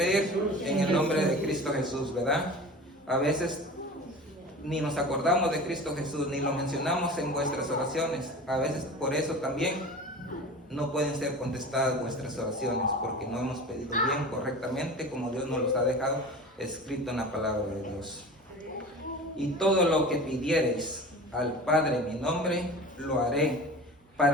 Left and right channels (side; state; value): both; normal; correlation 0.36